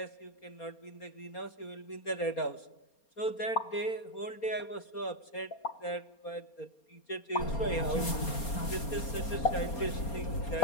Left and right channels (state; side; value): late; right; 4.3 ms